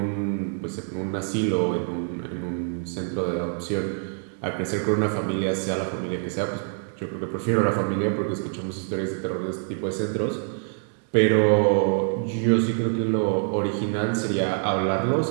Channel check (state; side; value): silent; left; 55 dB below the other